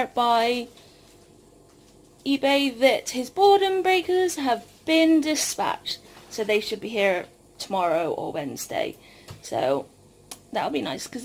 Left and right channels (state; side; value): identical; both; correlation 1.00